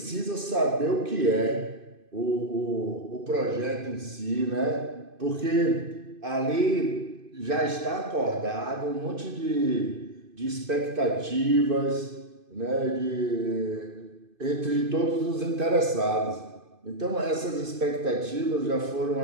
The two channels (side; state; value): left; late; 2.5 ms